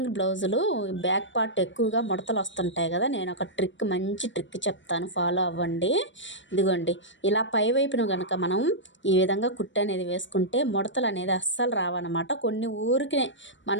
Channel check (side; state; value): right; late; 0.54 ms